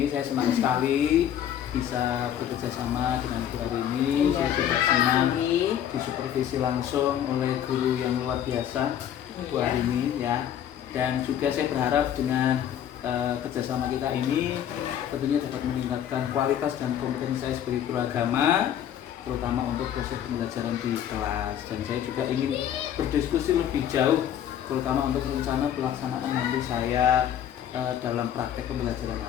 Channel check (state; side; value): quieter; right; 10.2 dB